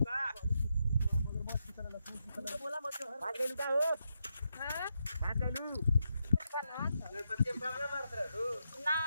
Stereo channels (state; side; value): inverted; both; correlation -0.83